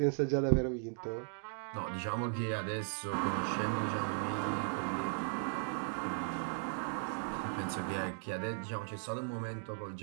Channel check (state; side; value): silent; left; 53 dB below the other